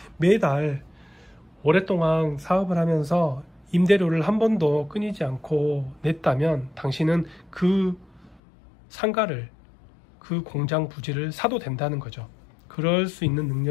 매달 오랫동안 사업을 하면서 임대료를 한 번도 끊이지 않고 냈다면 당신은 그 상가를, 그 공장 부지를 사도 된다는 거죠. 그럴 수 있는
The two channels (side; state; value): right; drops out; at 8.4 s